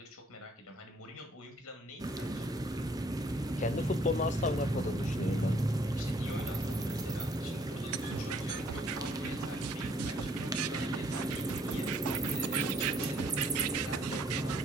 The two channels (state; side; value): normal; both; correlation 0.63